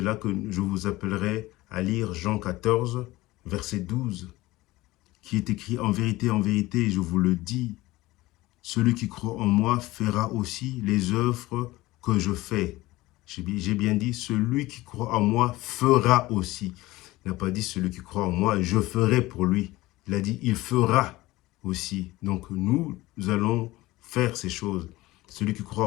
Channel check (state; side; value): quieter; right; 18.8 dB